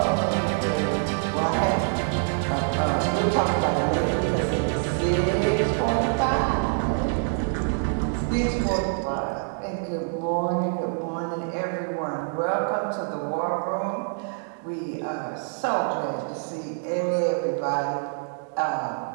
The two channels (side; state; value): left; silent; 61 dB below the other